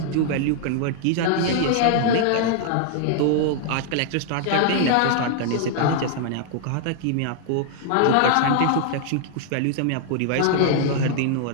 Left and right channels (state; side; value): different; both; correlation -0.01